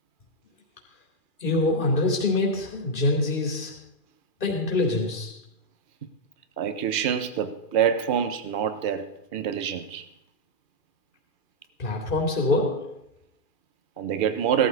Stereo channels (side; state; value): right; late; 2.4 ms